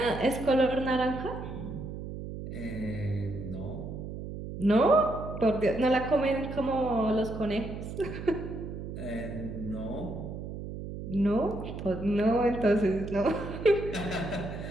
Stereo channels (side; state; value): right; noise; hum, 8 dB below the sound